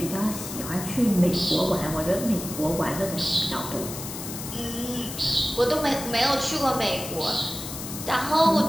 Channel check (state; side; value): noise; left; hiss, 9 dB below the sound